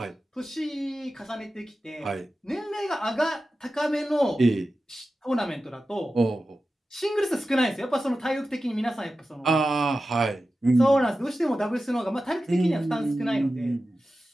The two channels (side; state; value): both; normal; correlation 0.93